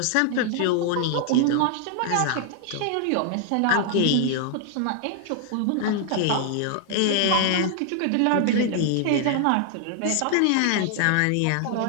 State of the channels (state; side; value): different; both; correlation 0.00